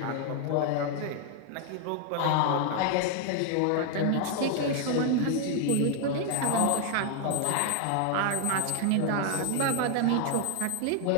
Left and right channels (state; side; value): different; both; correlation 0.00